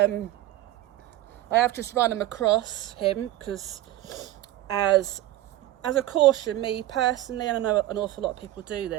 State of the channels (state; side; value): quieter; left; 15.1 dB